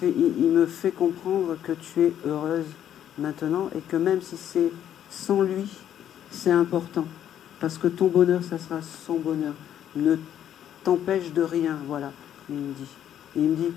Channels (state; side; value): quieter; right; 10.3 dB